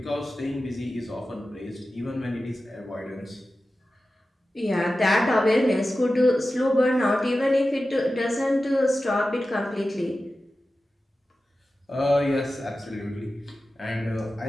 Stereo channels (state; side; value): normal; both; correlation 0.94